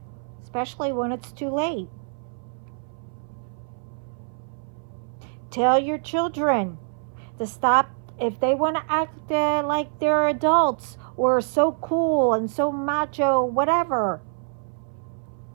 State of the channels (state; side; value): silent; left; 62 dB below the other